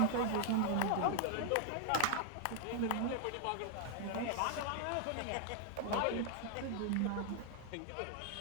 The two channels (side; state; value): both; different; correlation 0.00